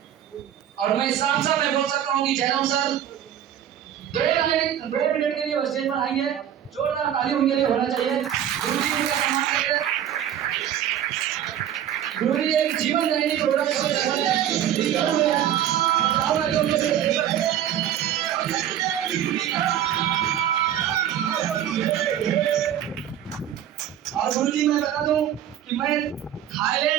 और मैं साफ साफ मैं बोल सकता हूँ कि जयराम सर 2 मिनट के लिए स्टेज पर आएंगे, जोरदार ताली उनके लिए होना चाहिए। गुरुजी उनका सम्मान करें। गुरुजी एक जीवन दायिनी प्रोडक्ट और गुरुजी मैं बता दूं कि मैं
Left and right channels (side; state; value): left; quieter; 10.5 dB